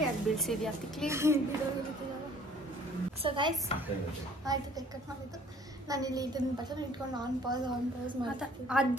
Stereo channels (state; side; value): normal; both; correlation 0.55